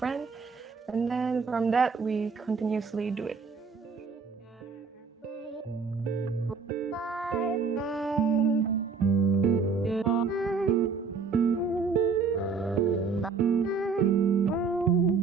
and then from that we continuously do it.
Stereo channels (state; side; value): quieter; left; 5.0 dB